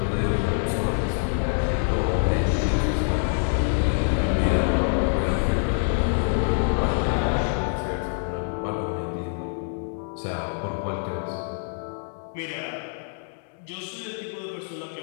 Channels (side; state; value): right; silent; 61 dB below the other